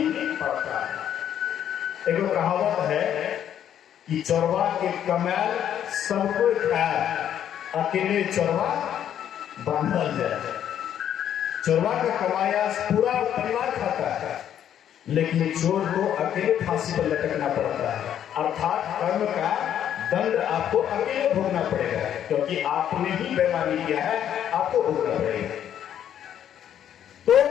पड़ता है। एक कहावत है कि चोरवा के कमाल सबको खाए, अकेले चोरवा बांधल जाए। चोरवा का कमाया पूरा परिवार खाता है, लेकिन चोर को अकेले फांसी पर लटकना पड़ता है, अर्थात कर्म का दंड आपको अकेले भोगना पड़ेगा, क्योंकि आपने ही बेईमानी किया है, आपको भोगना पड़ेगा। तो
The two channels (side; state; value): right; quieter; 10.0 dB